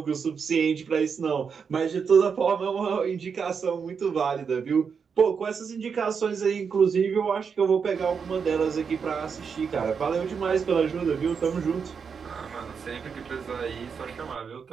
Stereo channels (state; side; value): quieter; left; 6.2 dB